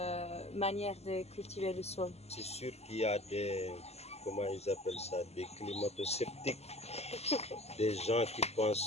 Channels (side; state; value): right; late; 0.30 ms